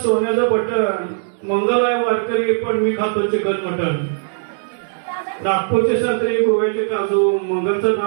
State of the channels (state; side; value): silent; left; digital silence